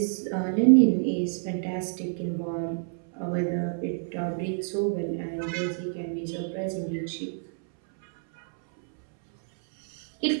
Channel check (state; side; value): silent; left; 60 dB below the other